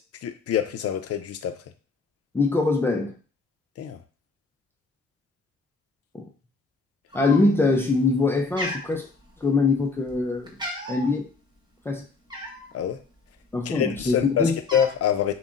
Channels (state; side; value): quieter; right; 4.1 dB